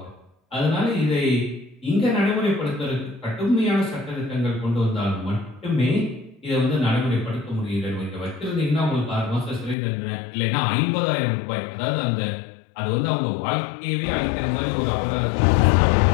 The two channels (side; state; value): right; drops out; at 9.8 s